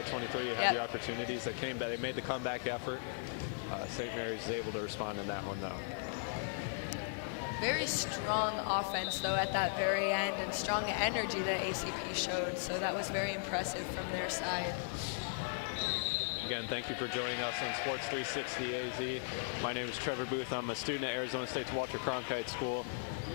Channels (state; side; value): silent; right; digital silence